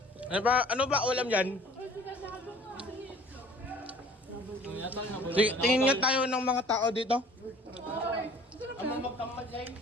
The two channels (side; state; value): both; normal; correlation 0.51